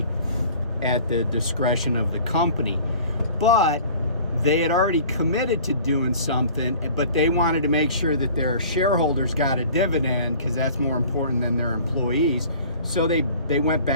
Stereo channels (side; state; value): both; inverted; correlation -0.47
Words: at the discretion of the company. But they had already committed to doing something, but they wanted to make sure that their shareholders got a dividend because that's more important than their employees. So they went